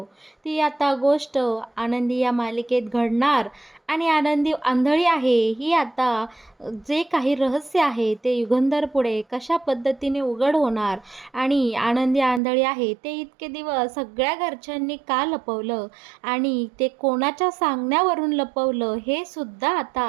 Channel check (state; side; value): drops out; left; at 12.4 s